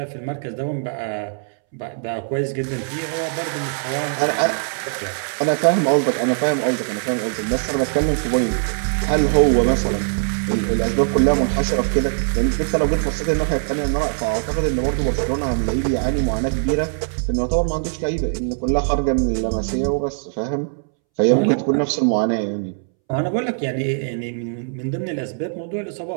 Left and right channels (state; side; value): silent; left; 65 dB below the other